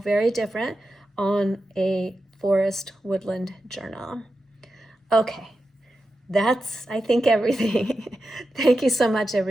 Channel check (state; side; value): normal; both; correlation 0.90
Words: different on a forest woodland journal. Okay, that's, I think, everything. Thank you so much,